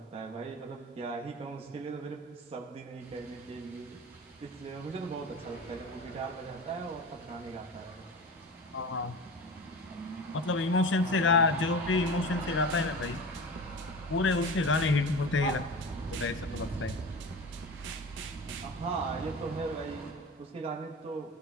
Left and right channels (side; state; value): both; normal; correlation 0.32